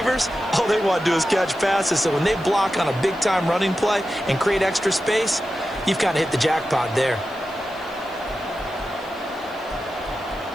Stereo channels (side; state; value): left; noise; hiss, 27 dB below the sound